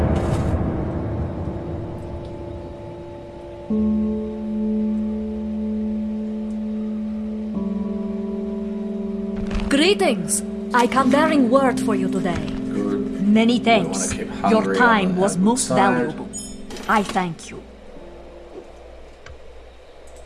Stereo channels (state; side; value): identical; both; correlation 1.00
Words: Greetings. I come bearing word for you today. Good. Many We wanna thanks. keep Your Hungary time on the was good most side. valuable. I thank you.